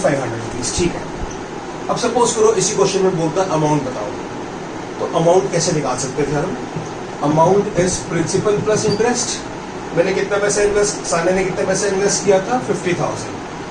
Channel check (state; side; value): identical; both; correlation 1.00